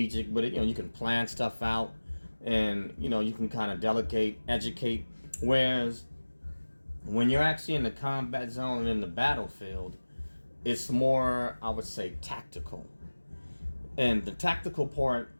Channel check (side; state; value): both; inverted; correlation -1.00